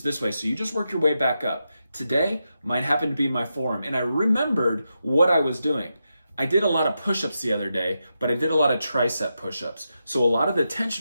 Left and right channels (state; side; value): inverted; both; correlation -0.87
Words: this way. So you just work your way back up. Today, mine happened to be my forearm, and I remembered what I was doing. I did a lot of push-ups the other day, but I did a lot of tricep push-ups. So a lot of the